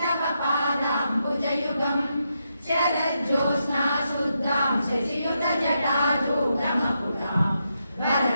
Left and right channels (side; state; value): both; inverted; correlation -0.83